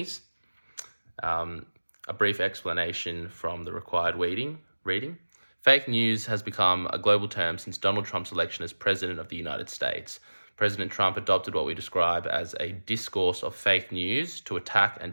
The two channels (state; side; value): inverted; both; correlation -1.00